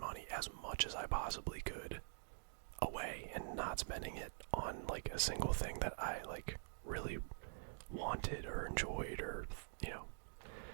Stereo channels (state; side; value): silent; left; digital silence